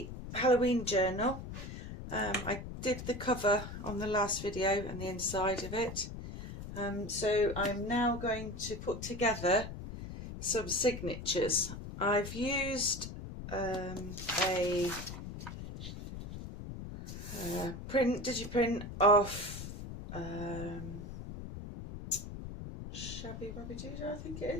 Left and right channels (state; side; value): noise; left; rumble, 9 dB below the sound